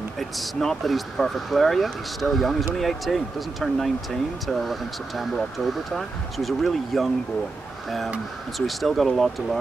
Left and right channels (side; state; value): left; quieter; 3.6 dB